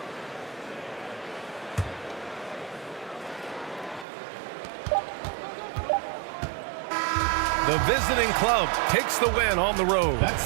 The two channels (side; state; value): left; drops out; at 4.0 s